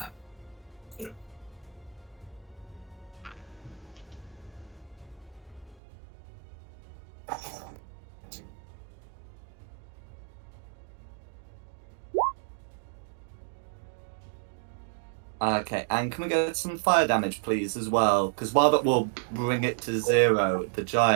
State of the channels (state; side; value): drops out; left; at 5.8 s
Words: Okay, and can we get some fire damage, please, as well? Because while that will bring it to 0, the